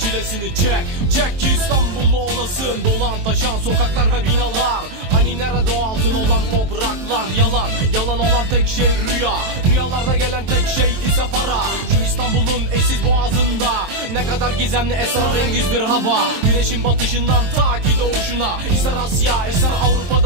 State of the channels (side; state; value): left; late; 23 ms